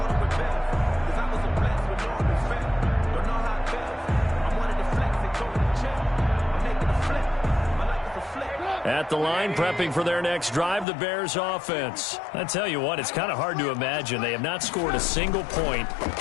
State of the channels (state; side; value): drops out; right; at 10.9 s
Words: At the line, prepping for their next drive, the Bears offense. I tell you what, it's kind of hard to imagine. They have not scored a single point,